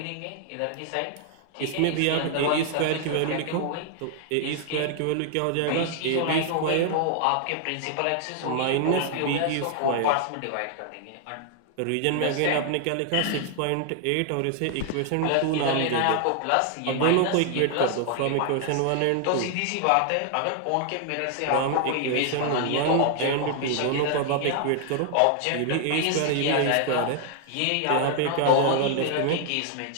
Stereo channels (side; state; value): both; different; correlation 0.00